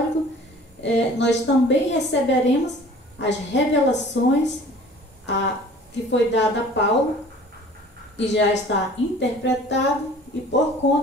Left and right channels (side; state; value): both; normal; correlation 0.47